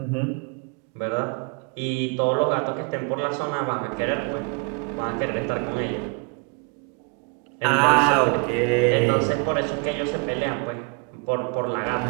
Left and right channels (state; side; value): quieter; left; 34.6 dB